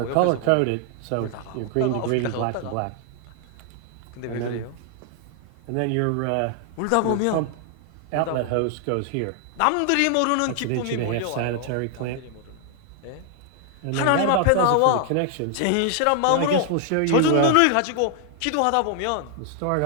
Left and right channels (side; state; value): both; different; correlation 0.00